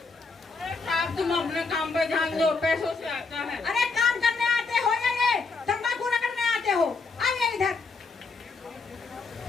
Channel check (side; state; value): right; quieter; 4.2 dB